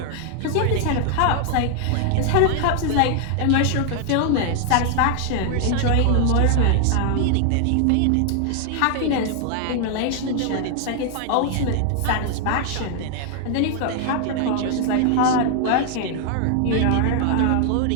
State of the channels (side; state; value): both; different; correlation 0.00